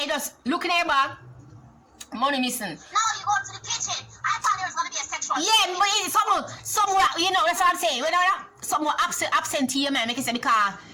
you just look in your bag. Money missing. No, you go to the kitchen. I thought there was going to be a sexual. Yeah, but it's somewhere, you know, that's what I'm saying. When somewhere absentee, man, make it say because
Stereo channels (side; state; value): both; identical; correlation 1.00